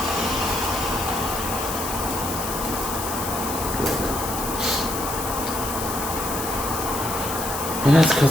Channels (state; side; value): noise; left; hiss, 6 dB below the sound